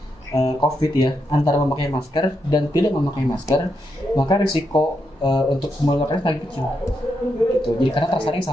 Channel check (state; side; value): normal; both; correlation 0.82